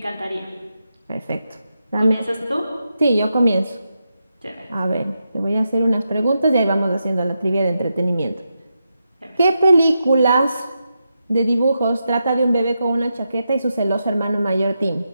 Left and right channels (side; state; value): both; inverted; correlation -0.86